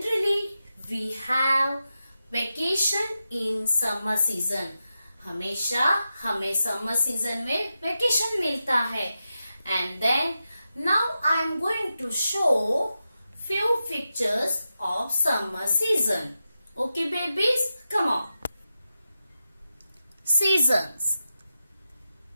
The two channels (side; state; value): both; inverted; correlation -0.90